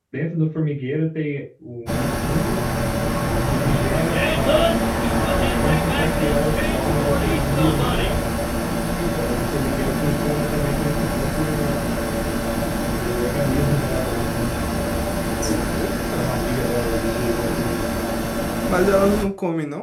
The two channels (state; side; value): identical; both; correlation 1.00